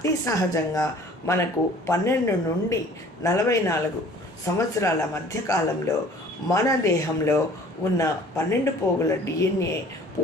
సహజంగా మనకు 12 నుండి 44 సంవత్సరాల మధ్యకాలంలో మన దేహంలో ఉన్న 12 పోగుల డిఎన్ఏ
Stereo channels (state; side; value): normal; both; correlation 0.51